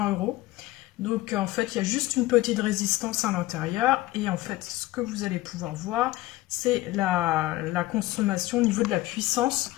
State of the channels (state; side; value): quieter; right; 17.7 dB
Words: €. Donc en fait il y a juste une petite résistance à l'intérieur et en fait ce que vous allez pouvoir voir c'est la consommation au niveau de la puissance.